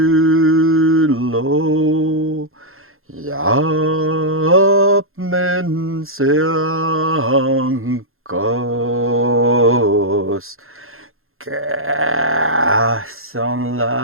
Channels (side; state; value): left; late; 0.61 ms